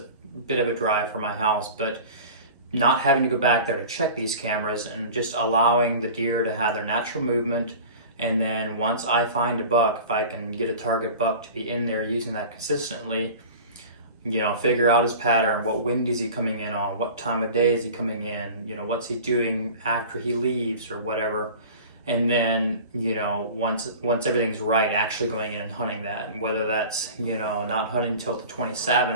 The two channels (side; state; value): both; inverted; correlation -0.38